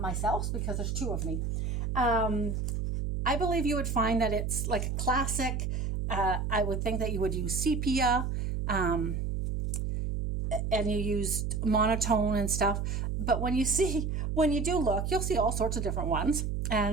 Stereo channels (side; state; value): right; noise; hum, 1 dB below the sound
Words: because there's two of me. I believe you would find that it's like a classic. I would think that you would use sepia, and you used monotone and stuff. But when you do look, you'll see all sorts of different ones.